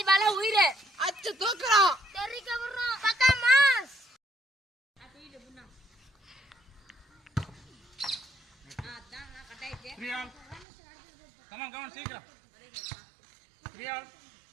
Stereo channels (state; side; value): drops out; left; at 10.7 s